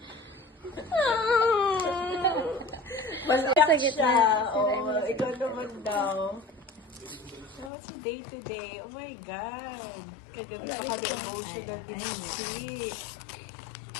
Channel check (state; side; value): drops out; right; at 7.7 s